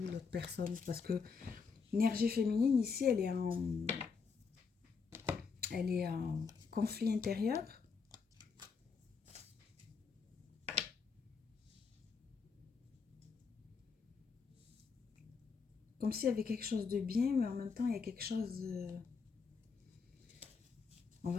l'autre personne, parce que l'énergie féminine ici, elle est en conflit intérieur. Comme s'il y avait quelque chose de bien, mais en même temps, il y a quelque chose... On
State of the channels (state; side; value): quieter; right; 5.3 dB